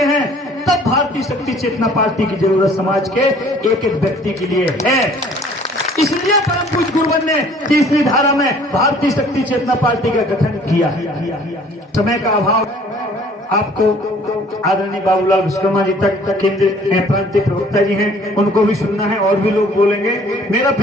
हैं, तब भारतीय शक्ति चेतना पार्टी की जरूरत समाज के एक एक व्यक्ति के लिए है। इसलिए परम पूज्य गुरुवर ने तीसरी धारा में भारतीय शक्ति चेतना पार्टी का गठन किया। समय का अभाव, आपको आदरणीय बाबूलाल विश्वकर्मा जी तक केंद्रीय प्रांतीय प्रवक्ता जी हैं, उनको भी सुनना है, और भी लोग बोलेंगे। मेरा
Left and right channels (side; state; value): both; normal; correlation 0.54